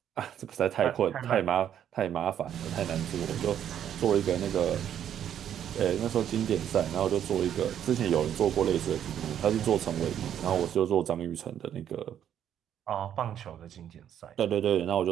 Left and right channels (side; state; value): left; quieter; 9.8 dB